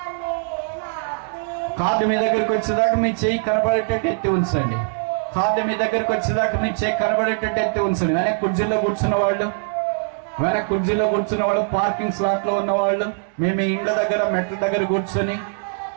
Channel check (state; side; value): silent; left; digital silence